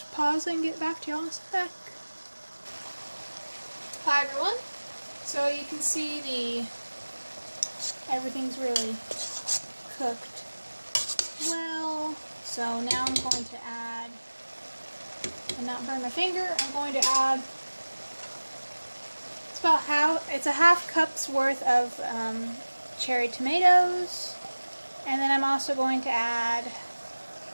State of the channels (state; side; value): inverted; both; correlation -1.00